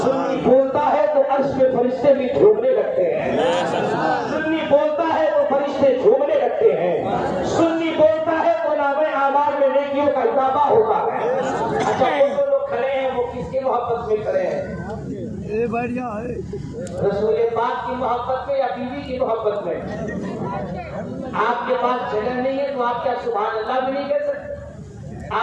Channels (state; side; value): identical; both; correlation 1.00